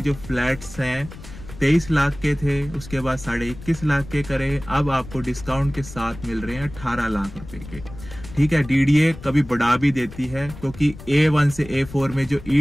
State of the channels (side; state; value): left; noise; rumble, 15 dB below the sound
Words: जो फ्लैट्स हैं 23 लाख के थे, उसके बाद 21.5 लाख के करे, अब आपको डिस्काउंट के साथ मिल रहे हैं 18 लाख रुपए के। ठीक है, DDA कभी बढ़ा भी देती है क्योंकि A1 से A4 में जो